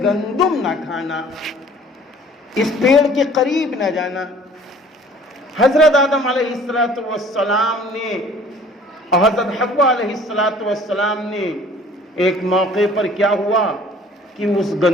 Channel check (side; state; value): both; normal; correlation 0.51